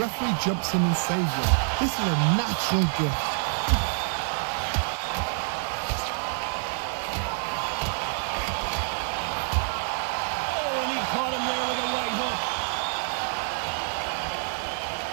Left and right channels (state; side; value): silent; left; digital silence